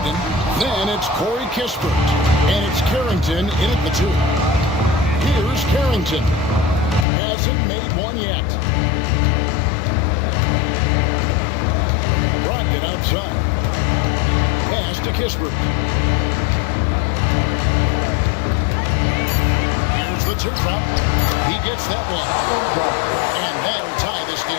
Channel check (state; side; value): drops out; right; at 7.1 s